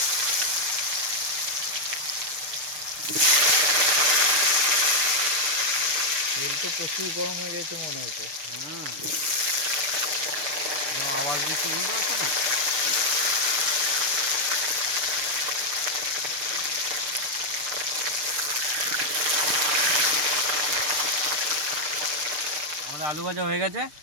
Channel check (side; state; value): left; late; 6.8 ms